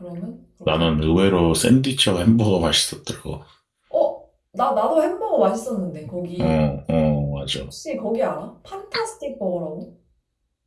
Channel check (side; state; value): both; identical; correlation 1.00